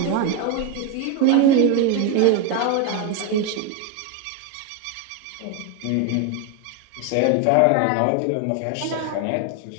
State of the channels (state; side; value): different; both; correlation 0.01